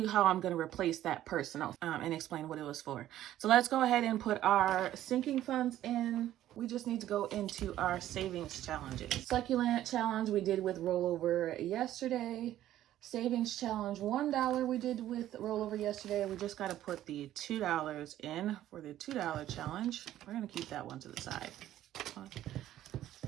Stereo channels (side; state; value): left; quieter; 12.9 dB